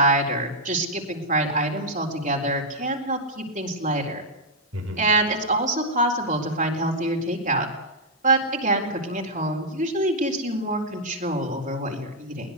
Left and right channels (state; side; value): normal; both; correlation -0.05